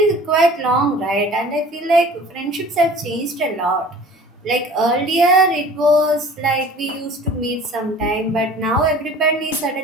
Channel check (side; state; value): both; normal; correlation 0.46